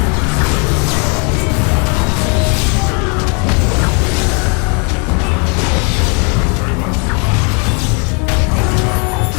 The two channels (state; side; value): quieter; right; 36.0 dB